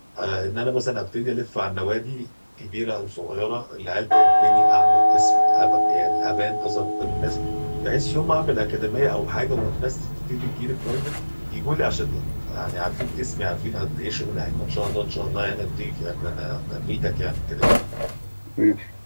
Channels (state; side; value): inverted; both; correlation -1.00